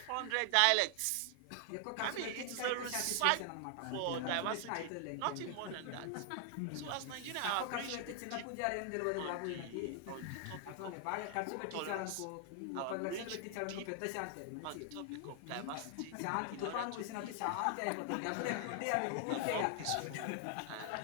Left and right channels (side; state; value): both; different; correlation 0.00